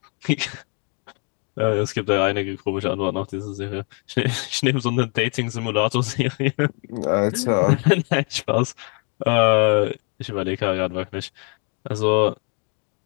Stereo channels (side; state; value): right; quieter; 36.3 dB